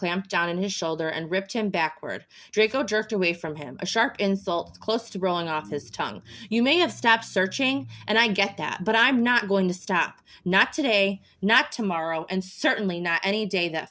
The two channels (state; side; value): identical; both; correlation 1.00